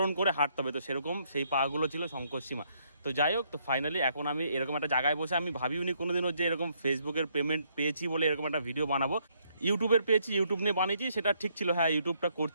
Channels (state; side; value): inverted; both; correlation -0.71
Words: করে হাঁটতে হবে, তো সেরকম সেই পাগুলো ছিল শঙ্কর সীমা। তো যাই হোক, তো ফাইনালি এখন আমি এরকম একটা জায়গায় বসে, আমি ভাবিওনি কোনোদিনও যে এরকম ফেসবুকের পেমেন্ট পেয়েছি বলে এরকম একটা ভিডিও বানাবো। ইউটিউবের পেয়েছি, ইউটিউব নিয়ে বানিয়েছি, সেটা ঠিক ছিল, হ্যাঁ ইউটিউবটা